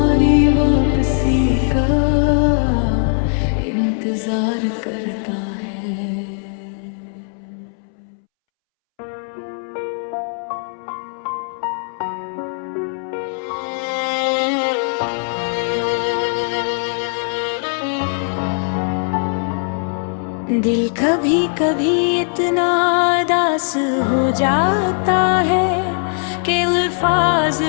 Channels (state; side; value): silent; right; 66 dB below the other